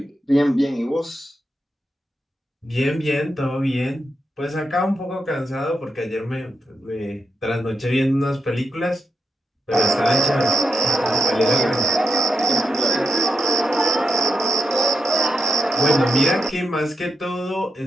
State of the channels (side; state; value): both; normal; correlation 0.84